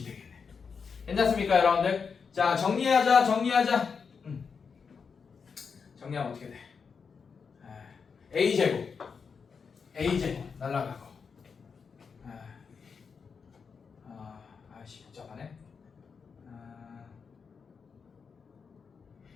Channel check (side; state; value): right; quieter; 5.8 dB